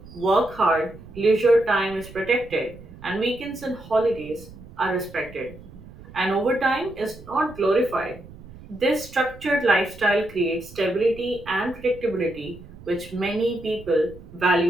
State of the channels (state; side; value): noise; right; rumble, 18 dB below the sound